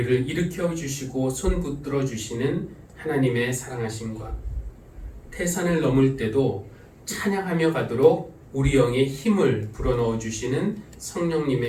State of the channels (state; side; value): identical; both; correlation 1.00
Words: 일으켜 주시고 손 붙들어 주시는 하나님의 사랑하심과 태산을 넘을 때도 찬양하며 가도록 우리 영에 힘을 불어넣어 주시는